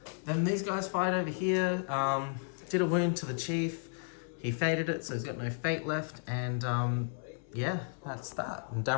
Then these guys fired over here. Did a wound to the chief. He faded it, so he's got no fate left. And yeah, that's that. And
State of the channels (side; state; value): right; silent; 55 dB below the other